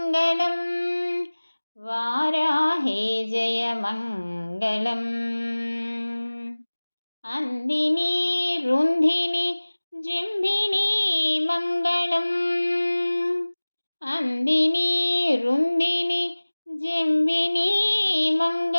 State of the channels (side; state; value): both; inverted; correlation -1.00